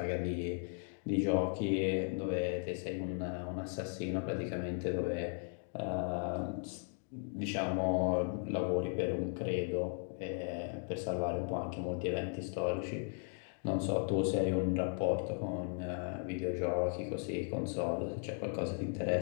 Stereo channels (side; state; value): right; silent; 53 dB below the other